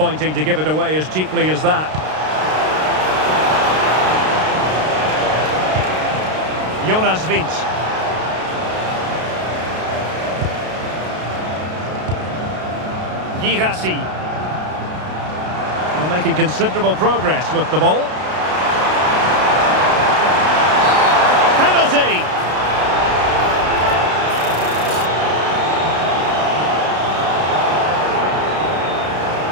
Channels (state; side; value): late; left; 32 ms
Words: to give it away as cheaply as that. Jonas Wind. Girassi. Well, making considerable progress with the ball. Penalty!